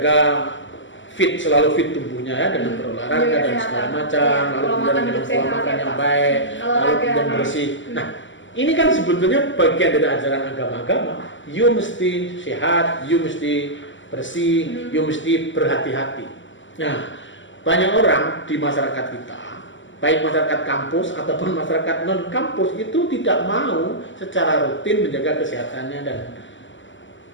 selalu fit tubuhnya ya dengan berolahraga dan segala macam, lalu kemudian dengan pola makan yang baik, lalu kemudian bersih. Nah, ini kan sebetulnya bagian dari ajaran agama-agama. You mesti sehat, you mesti bersih, you mesti berhati-hati. Nah, banyak orang di masyarakat kita, baik masyarakat kampus ataupun masyarakat non-kampus itu tidak mau secara rutin menjaga kesehatannya dan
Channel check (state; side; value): late; right; 0.55 ms